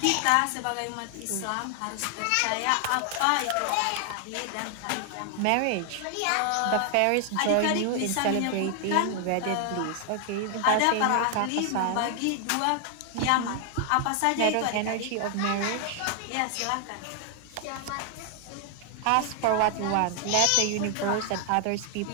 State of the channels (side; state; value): both; different; correlation 0.00